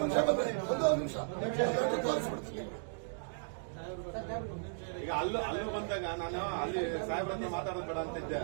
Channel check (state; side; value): silent; left; digital silence